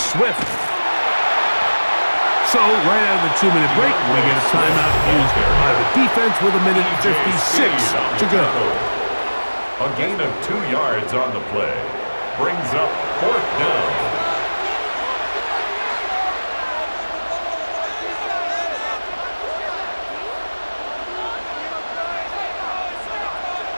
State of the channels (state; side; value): inverted; both; correlation -1.00